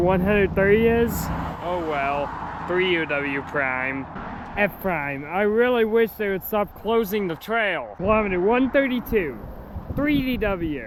is? Oh well, 3UW Prime. F Prime. I really wish they would stop closing the trail. Kilometer 132,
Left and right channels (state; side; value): identical; both; correlation 1.00